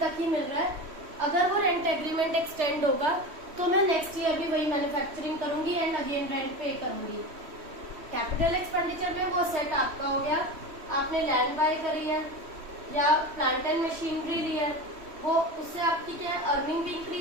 ही मिल रहा है. अगर वो रेंट एग्रीमेंट एक्सटेंड होगा तो मैं नेक्स्ट ईयर भी वही मैन्युफैक्चरिंग करूंगी एंड अगेन रेंट पे करूंगी. कैपिटल एक्सपेंडिचर में वो सेट आपका हो गया, आपने लैंड बाय करी है या प्लांट एंड मशीनरी ली है, वो उससे आपकी क्या अर्निंग भी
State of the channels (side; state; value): left; late; 3.1 ms